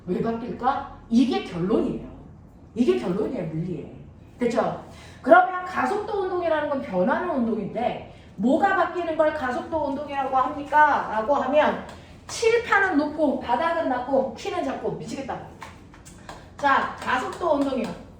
왜 바뀔까? 이게 결론이에요. 이게 결론이에요, 물리에. 됐죠? 그러면 가속도 운동이라는 건 변하는 운동인데 뭐가 바뀌는 걸 가속도 운동이라고 합니까? 라고 하면 칠판은 높고 바닥은 낮고 키는 작고 미치겠다. 자, 가속도 운동이요.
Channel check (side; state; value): both; identical; correlation 1.00